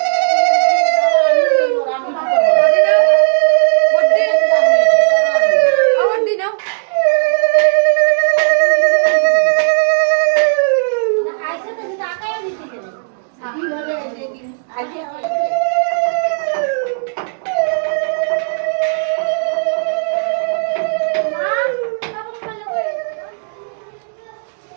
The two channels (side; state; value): left; silent; digital silence